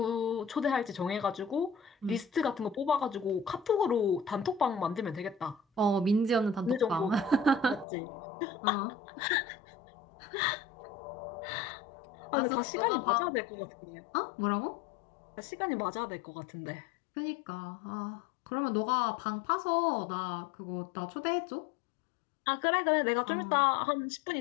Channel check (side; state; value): right; drops out; at 7.9 s